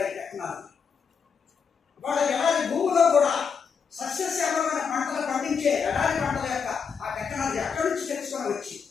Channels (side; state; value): right; quieter; 6.2 dB